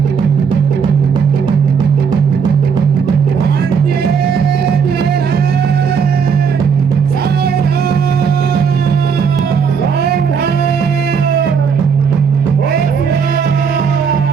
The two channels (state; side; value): quieter; left; 6.3 dB